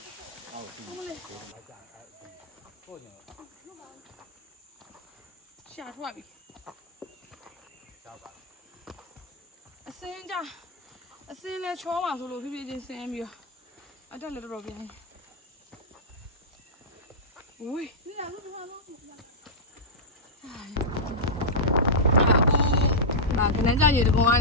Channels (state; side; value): normal; both; correlation -0.10